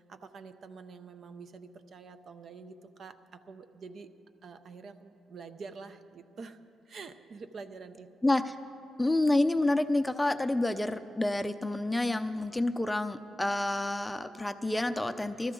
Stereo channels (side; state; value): both; normal; correlation 0.97